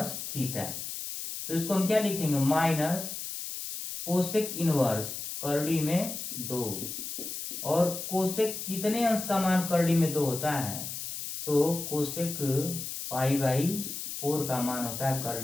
थीटा। तो इसको हम क्या लिखेंगे, माइनस कोसेक इनवर्स करड़ी में 2। और कोसेक कितने अंश का मान करड़ी में 2 होता है, तो कोसेक पाई बाई 4 का मान होता है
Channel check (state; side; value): noise; left; hiss, 6 dB below the sound